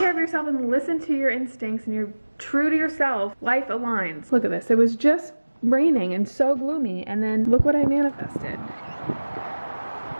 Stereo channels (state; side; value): inverted; both; correlation -1.00